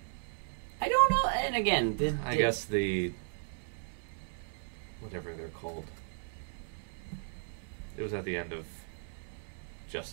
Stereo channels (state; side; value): silent; left; digital silence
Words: I don't know. And again, I guess the whatever they're called. It was at the end of